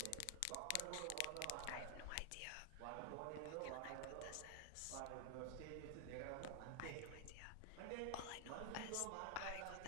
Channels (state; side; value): different; both; correlation 0.00